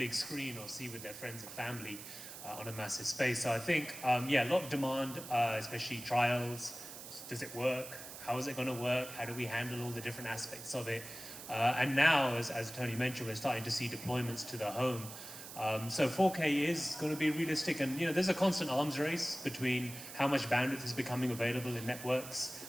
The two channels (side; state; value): right; noise; hiss, 12 dB below the sound